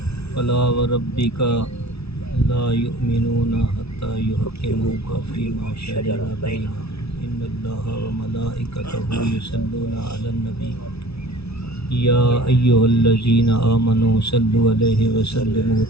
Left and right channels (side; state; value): right; late; 0.79 ms